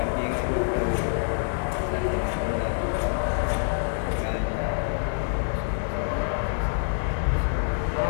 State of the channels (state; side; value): silent; right; digital silence